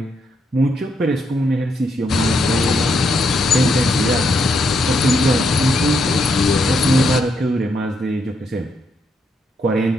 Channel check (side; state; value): both; normal; correlation 0.78